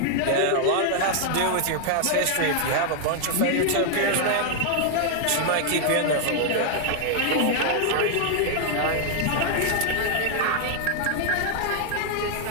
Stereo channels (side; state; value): both; different; correlation 0.00